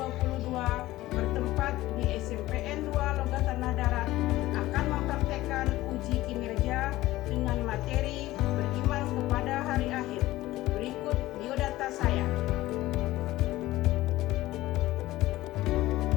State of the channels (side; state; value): right; quieter; 16.8 dB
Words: bertempat di SMPN 2 Logat Tanah Darat akan mempraktekkan uji kinerja dengan materi beriman kepada hari akhir. Berikut biodata saya.